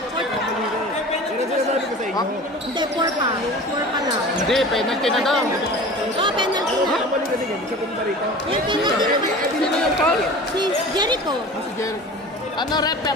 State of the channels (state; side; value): normal; both; correlation 0.38